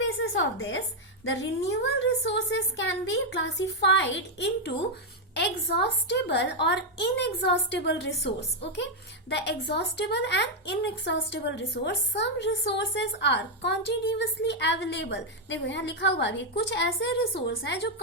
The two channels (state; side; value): normal; both; correlation 0.01